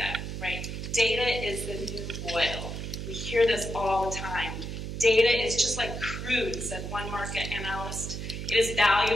right? Data is the new oil. We hear this all the time. Data is just like crude, said one market analyst. It is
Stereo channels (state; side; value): noise; right; hum, 6 dB below the sound